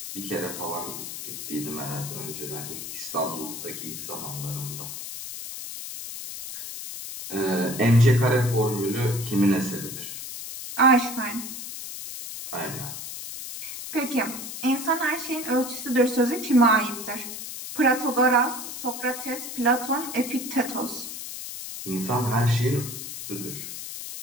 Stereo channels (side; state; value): left; noise; hiss, 8 dB below the sound